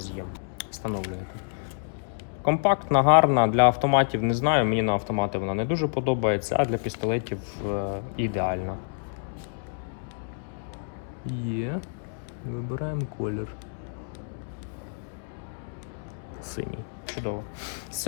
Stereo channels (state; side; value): silent; right; digital silence